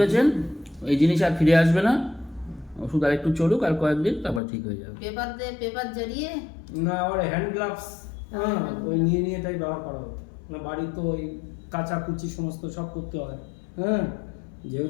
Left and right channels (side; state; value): right; drops out; at 4.4 s